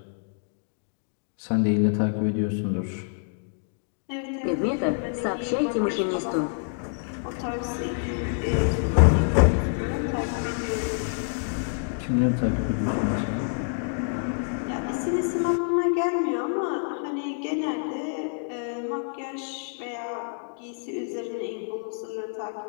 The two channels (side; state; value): right; silent; digital silence